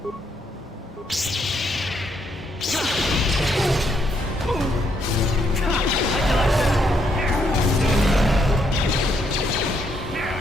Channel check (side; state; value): both; normal; correlation 0.74